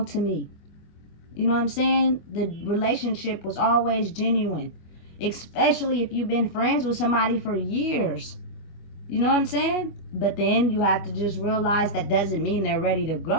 to me. You know what I'm saying? The relationship was always genuine, especially if you've been friends with somebody for years. You know what I'm saying? But then you have to just realize that doesn't mean they're ready to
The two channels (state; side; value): late; right; 25 ms